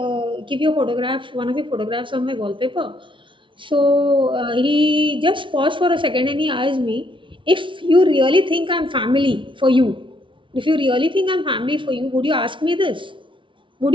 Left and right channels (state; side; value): late; left; 0.25 ms